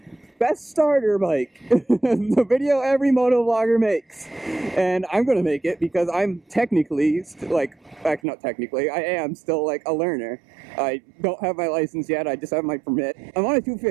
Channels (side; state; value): left; drops out; at 8.2 s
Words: best starter bike. The video every moto vlogger makes. And I'm going to make it because I'm technically, actually not technically, I am still like a learner. I don't have my license yet, I just have my permit. I'm on a